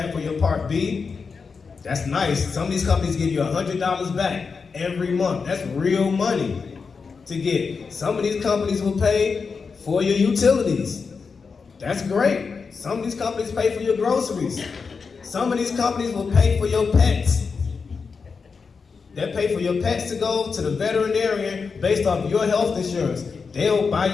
for your Part B. That's nice. Some of these companies give you $100 back every month. That's real money to get. Some of these companies will pay for your utilities. That's great. Some of these companies pay for your groceries. Some of these companies will pay for your pets. They pay for your pets to go to the veterinarian based off your health insurance. They'll buy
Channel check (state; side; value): quieter; right; 5.2 dB